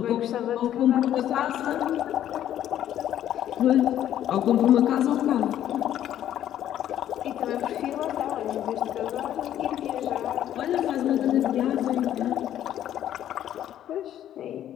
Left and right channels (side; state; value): right; quieter; 11.3 dB